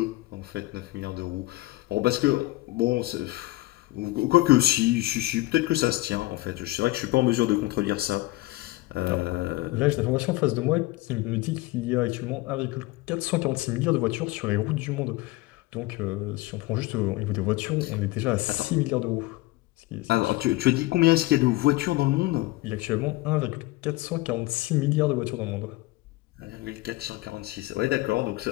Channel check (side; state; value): right; quieter; 19.4 dB